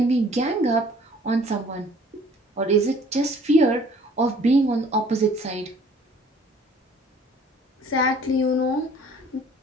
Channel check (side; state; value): both; normal; correlation 0.54